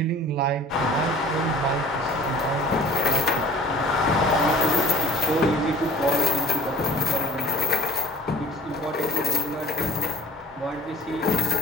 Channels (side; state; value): both; normal; correlation 0.47